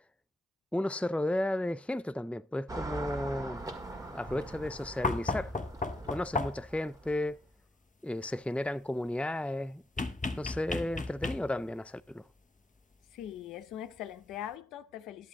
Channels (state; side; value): normal; both; correlation 0.81